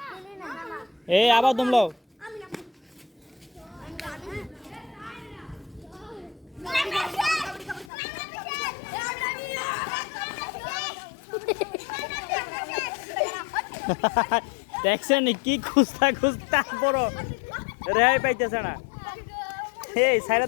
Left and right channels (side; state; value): right; drops out; at 7.9 s